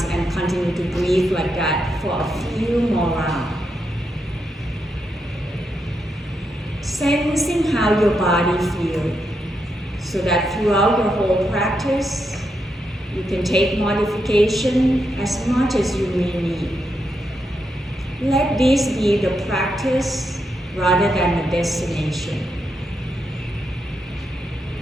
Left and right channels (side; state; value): both; normal; correlation 0.83